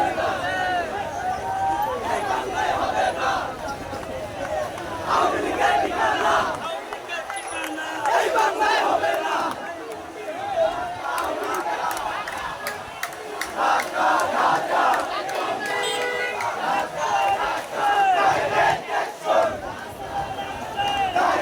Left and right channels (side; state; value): both; identical; correlation 1.00